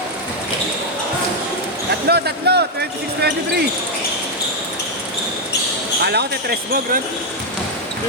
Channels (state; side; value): normal; both; correlation 0.01